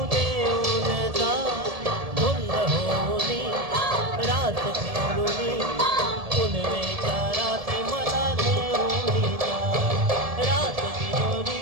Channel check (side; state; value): left; late; 1.7 ms